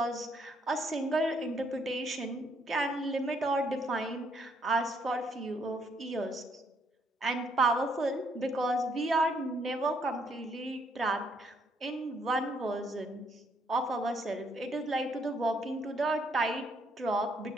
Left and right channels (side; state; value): both; normal; correlation 0.71